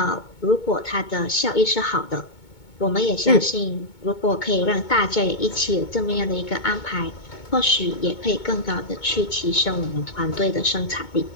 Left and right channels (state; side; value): late; right; 2.2 ms